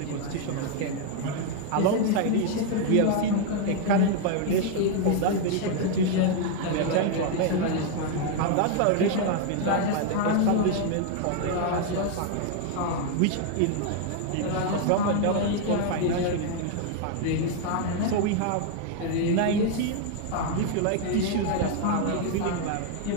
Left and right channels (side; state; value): both; different; correlation 0.00